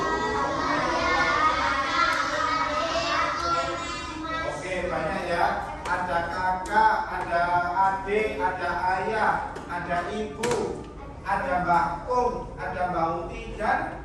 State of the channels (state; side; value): identical; both; correlation 1.00